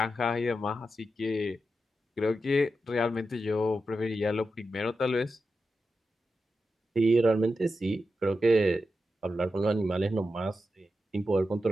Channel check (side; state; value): both; normal; correlation 0.89